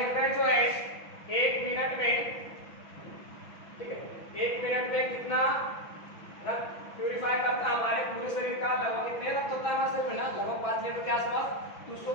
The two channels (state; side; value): late; right; 6.0 ms